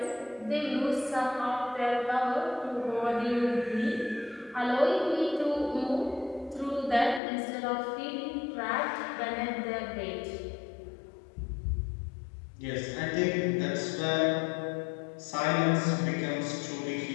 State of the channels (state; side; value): drops out; right; at 7.2 s